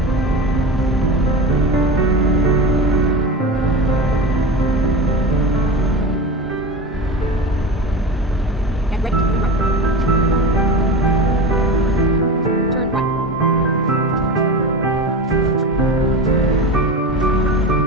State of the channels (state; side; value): normal; both; correlation 0.27